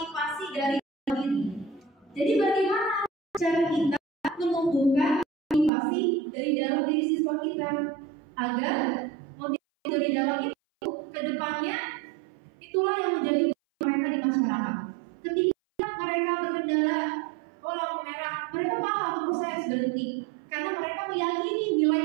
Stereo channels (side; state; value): left; drops out; at 5.7 s